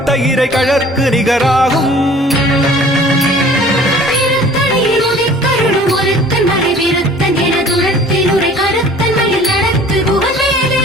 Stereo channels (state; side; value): normal; both; correlation 0.49